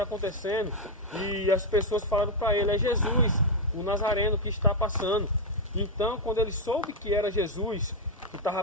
acontecendo? E as pessoas falaram para ele, é Jesus, o Nazareno que está passando. Então, quando ele soube que era Jesus que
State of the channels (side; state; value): both; normal; correlation 0.02